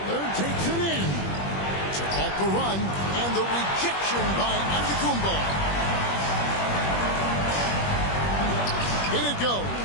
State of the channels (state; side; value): late; right; 21 ms